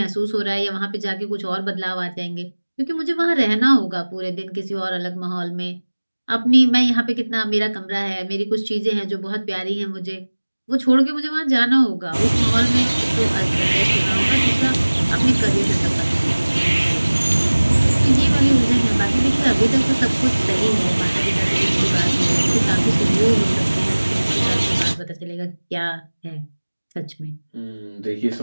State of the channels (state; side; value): inverted; both; correlation -1.00